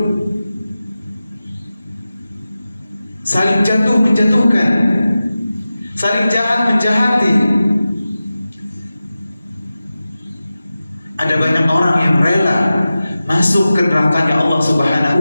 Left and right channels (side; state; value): both; inverted; correlation -0.95